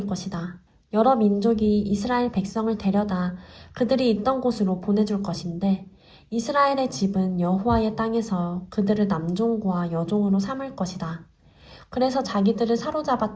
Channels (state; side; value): identical; both; correlation 1.00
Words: 것이다. 여러 민족이 이스라엘 백성을 데려다 그들이 있던 곳으로 보내줄 것인데 이스라엘의 집은 여호와의 땅에서 그들을 남종과 여종으로 삼을 것이다. 그래서 자기들을